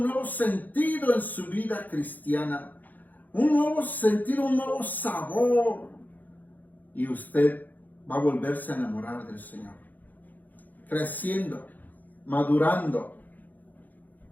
nuevo sentido en su vida cristiana. Un nuevo sentido, un nuevo sabor. Y usted va a volverse a enamorar del Señor. Creciendo, madurando.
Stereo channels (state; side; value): late; right; 0.083 ms